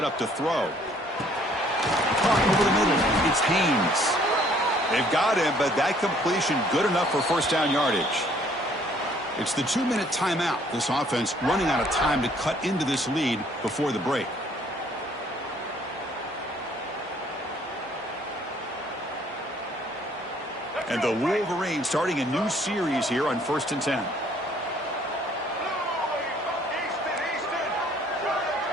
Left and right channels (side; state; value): both; normal; correlation 0.61